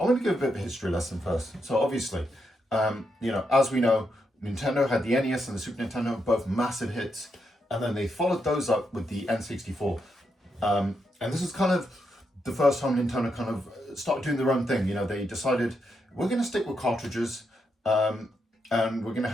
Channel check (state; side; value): normal; both; correlation 0.82